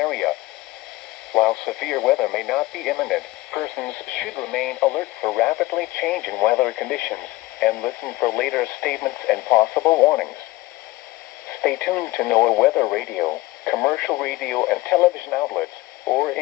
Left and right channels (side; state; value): right; quieter; 19.4 dB